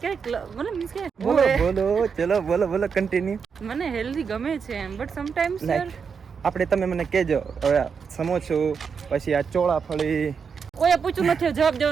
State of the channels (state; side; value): quieter; left; 6.1 dB